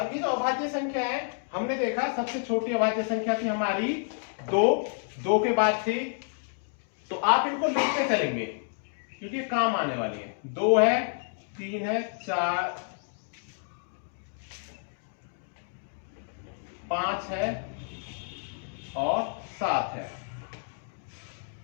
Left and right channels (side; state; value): right; silent; digital silence